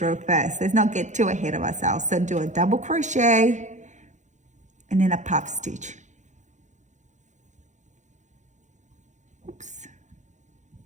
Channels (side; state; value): left; late; 0.35 ms